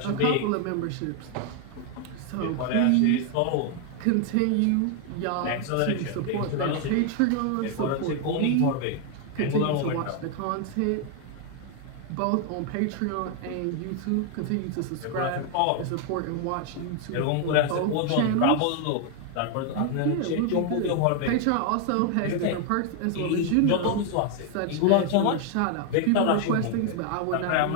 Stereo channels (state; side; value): different; both; correlation 0.00